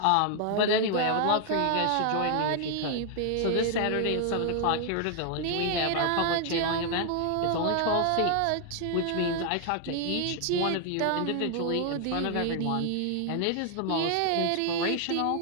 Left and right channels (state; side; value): different; both; correlation 0.00